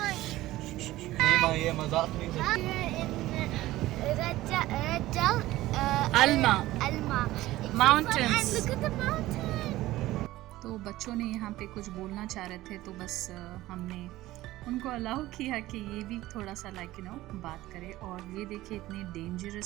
ये मजाक नहीं Alma Mountains. Look at the mountain. तो बच्चों ने यहाँ पे कुछ बोलना चाह रहे थे, तो बस हमने उनको अलाउ किया कि ये भी थोड़ा सा लाइक यू नो बात करे. और ये देखिए इतने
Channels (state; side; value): quieter; left; 16.7 dB